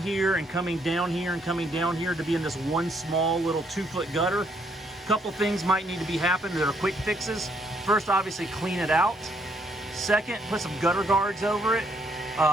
and coming down here and coming down here to be in this one small little 2-foot gutter. A couple things might need to be happening that are quick fixes. First, obviously clean it out. Second, put some gutter guards over it.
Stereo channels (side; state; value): both; normal; correlation 0.70